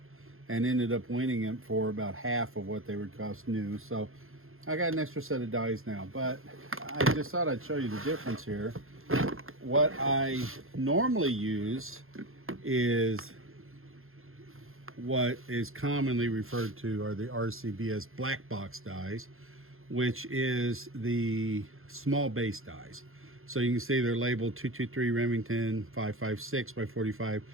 and ended up winning them for about half of what they would cost new. So I got an extra set of dies now, but I just thought I'd show you the difference here. What I normally use is what is commonly referred to are the RCBS black box dies, which is the small base dies. So you can see they're labeled 223 Remington 556 by 45.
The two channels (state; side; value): late; left; 0.61 ms